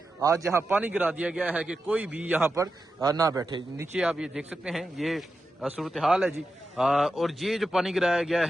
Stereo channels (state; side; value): normal; both; correlation 0.90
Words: آج یہاں پانی گرا دیا گیا ہے کہ کوئی بھی یہاں پر نہ بیٹھے۔ نیچے آپ یہ دیکھ سکتے ہیں، یہ صورتحال ہے جی، اور یہ جو پانی گرایا گیا